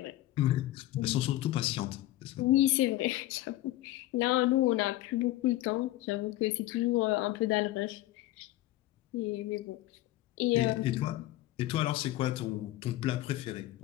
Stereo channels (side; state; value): right; quieter; 15.9 dB